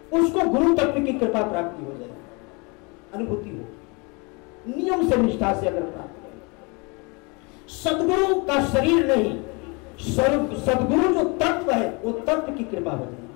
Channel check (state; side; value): quieter; right; 29.8 dB